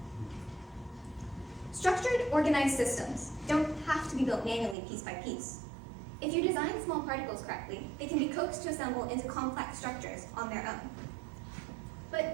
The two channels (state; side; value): drops out; left; at 4.8 s